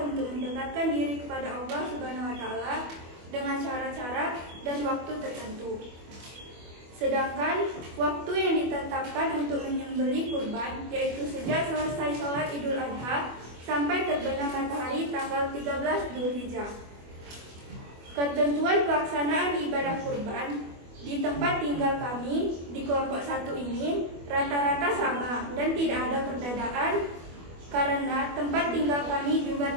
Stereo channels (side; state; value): left; late; 24 ms